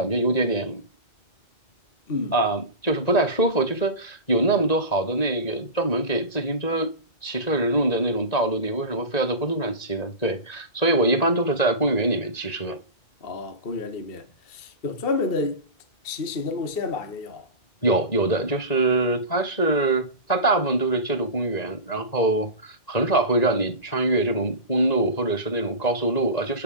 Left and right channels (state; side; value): late; right; 1.9 ms